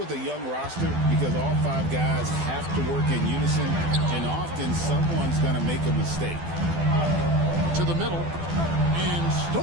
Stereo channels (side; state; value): left; late; 12 ms